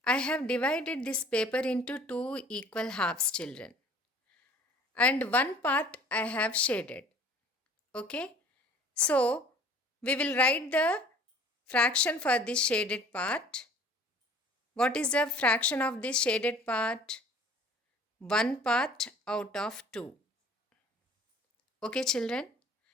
I have divided this paper into two equal halves, children. And one part I have shaded. Okay? So we will write the fraction for this shaded part. What is the fraction of this shaded part? 1 part out of 2. Okay children.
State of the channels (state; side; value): normal; both; correlation 0.51